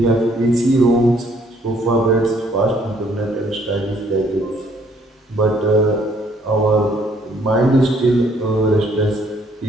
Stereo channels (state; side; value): normal; both; correlation 0.65